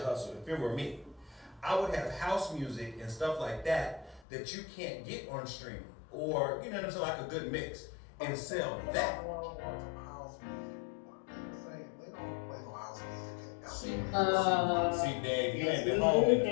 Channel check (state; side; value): drops out; right; at 4.2 s